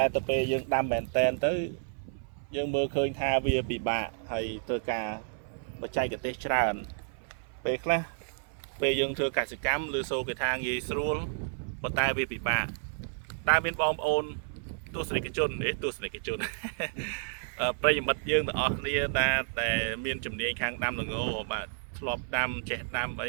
ែទៅពេលយើងដាំមែនតែនទៅយើងមើលឃើញថាវាពិបាកហើយត្រូវការបច្ចេកទេសច្រើនពេលខ្លះពេលយើងធ្វើកសិកម្មឬសូគេថាងាយស្រួលប៉ុន្តែវាពិបាកតែមានបងប្អូនទស្សនិកជនប្រិយមិត្តយើងទាំងអស់គ្នាតែមានជំនាញខាងដាំល្ងបាទធ្លាប់ដាំចេះដាំអ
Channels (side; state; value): left; silent; 56 dB below the other